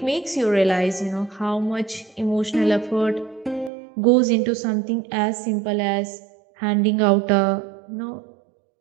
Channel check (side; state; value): left; drops out; at 3.7 s